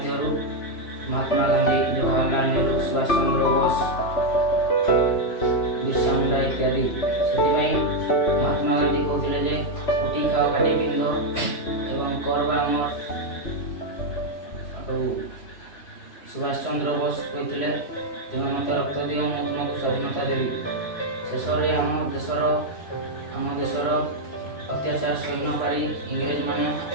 ମହାତ୍ମା ଗାନ୍ଧୀ, ଜବାହରଲାଲ ନେହେରୁ, ସୁଭାଷ ଚନ୍ଦ୍ର ବୋଷ, ବିର୍ସା ମୁଣ୍ଡା ଇତ୍ୟାଦି। ସେଥିପାଇଁ ମହାତ୍ମା ଗାନ୍ଧୀ କହୁଥିଲେ ଯେ ଉଠି ଖାଅ ଖାଟି ପିନ୍ଧ ଏବଂ କର ବା ମର। ଆଉ ସୁଭାଷ ଚନ୍ଦ୍ର ବୋଷ କହିଥିଲେ ତୁମେ ମୋତେ ରକ୍ତ ଦିଅ, ମୁଁ ତୁମକୁ ସ୍ୱାଧୀନତା ଦେବି। ଶେଷରେ ଆମ ଦେଶର ଅତ୍ୟାଚାର ସହି ନ ପାରି ଇଂରେଜମାନେ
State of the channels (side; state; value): right; late; 3.0 ms